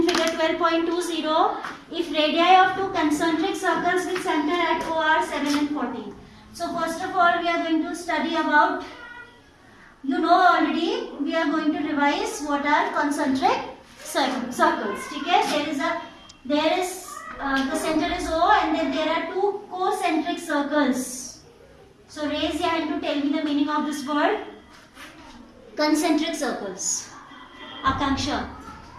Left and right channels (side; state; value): both; identical; correlation 1.00